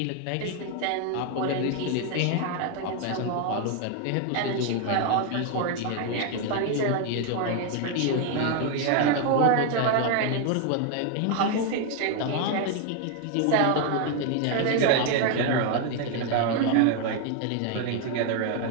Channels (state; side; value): different; both; correlation 0.01